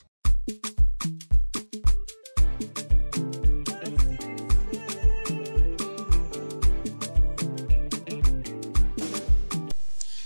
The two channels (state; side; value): inverted; both; correlation -1.00